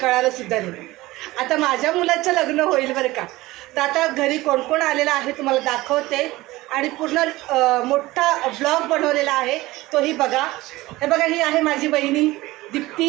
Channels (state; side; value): quieter; left; 18.9 dB